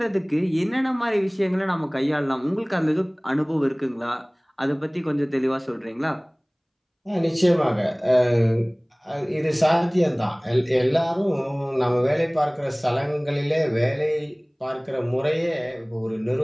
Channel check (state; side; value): identical; both; correlation 1.00